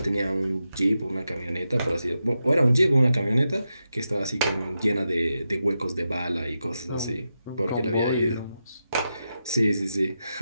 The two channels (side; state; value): both; inverted; correlation -0.88